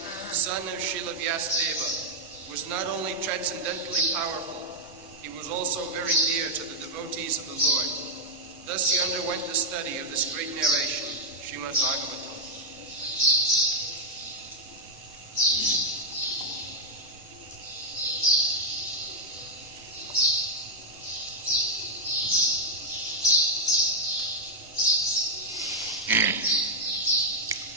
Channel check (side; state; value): left; noise; rumble, 26 dB below the sound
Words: son of Srila Vyasadeva, was not only transcendently powerful, he was also very dear to the devotees of the Lord. Thus he underwent the study of this great narration, Srimad Bhagavatam.